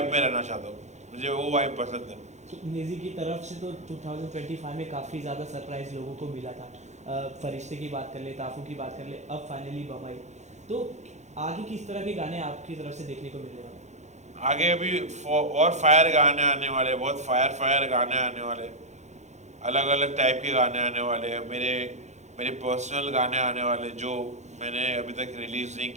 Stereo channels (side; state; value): left; late; 0.33 ms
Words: में रहना चाहता हूँ. मुझे वो वाइब पसंद है. नेजी की तरफ से तो 2025 में काफ़ी ज़्यादा सरप्राइज लोगों को मिला था. फरिश्ते की बात कर ले, ताफू की बात कर ले, अब फाइनली बम्बई. तो आगे किस तरह के गाने आपकी तरफ से देखने को मिलने वाले? आगे अभी और फायर गाने आने वाले, बहुत फायर गाने आने वाले, अलग अलग टाइप के गाने आने वाले हैं. मेरे पर्सनल गाने आने वाले जो मैंने अभी तक रिलीज़ नहीं